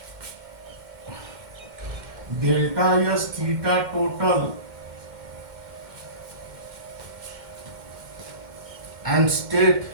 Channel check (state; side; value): late; left; 2.1 ms